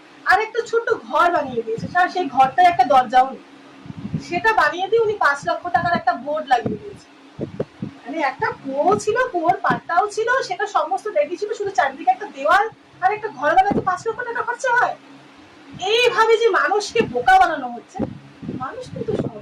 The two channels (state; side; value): identical; both; correlation 1.00